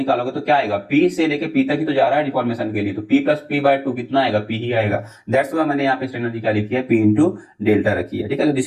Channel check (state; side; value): identical; both; correlation 1.00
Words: तो क्या आएगा, P से लेके P तक ही तो जा रहा है डिफॉर्मेशन के लिए, तो P प्लस P/2 कितना आएगा, P ही आएगा। दैट्स व्हाई मैंने यहाँ पे स्ट्रेन एनर्जी क्या लिखी है, P इंटू डेल्टा रखी है, ठीक है।